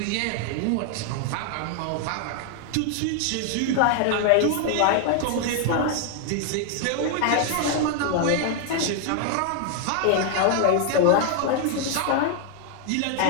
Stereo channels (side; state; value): both; different; correlation 0.00